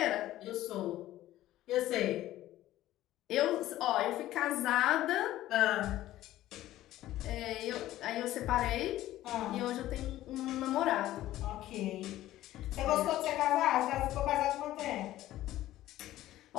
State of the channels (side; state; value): right; quieter; 14.6 dB